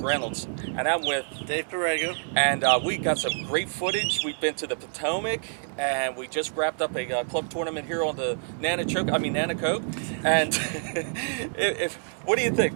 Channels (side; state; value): left; silent; digital silence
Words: and I'm with Dave Perego. And we got some great footage. We've been to the Potomac, and we just wrapped up a club tournament here on the Nanticoke. And what do you think?